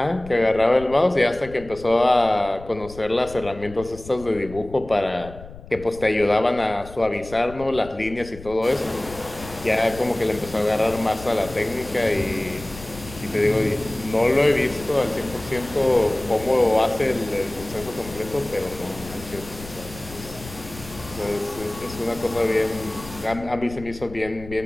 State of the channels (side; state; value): left; noise; rumble, 16 dB below the sound